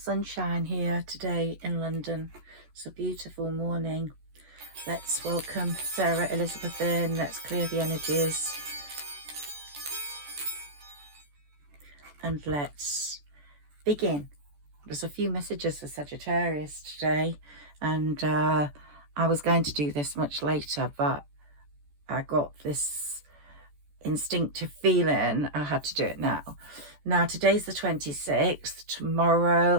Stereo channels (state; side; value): late; left; 14 ms